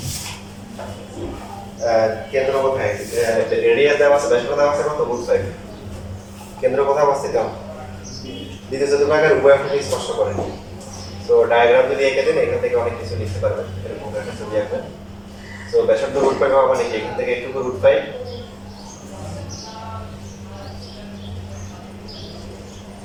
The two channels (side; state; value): both; identical; correlation 1.00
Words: কেন্দ্র কোথায়? রেডিয়াস দেওয়া আছে, ব্যাসার্ধ দেওয়া আছে কত? বুঝতে পারি। কেন্দ্র কোথায় অবস্থিত? দ্বিতীয় চতুর্ভাগের উভয় অক্ষকে স্পর্শ করে। তো ডায়াগ্রাম যদি এঁকে দেন এখান থেকে অনেক কিছু লিখতে পারবেন, এরকম একটা ছবি আঁকবেন। তো ব্যাসার্ধ রুট পাই পাওয়া মানে কি এখান থেকে একটু রুট পাই,